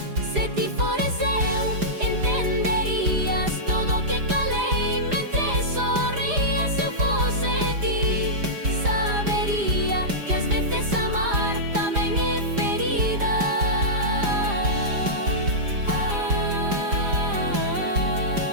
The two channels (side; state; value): left; late; 4.9 ms